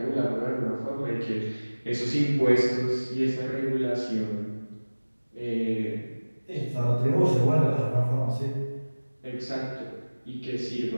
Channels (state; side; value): inverted; both; correlation -1.00